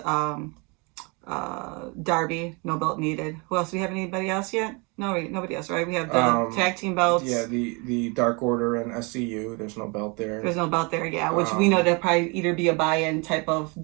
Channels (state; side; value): quieter; left; 30.3 dB